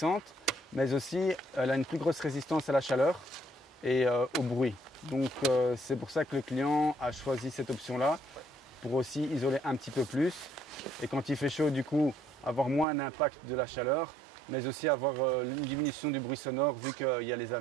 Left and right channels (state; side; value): drops out; left; at 12.9 s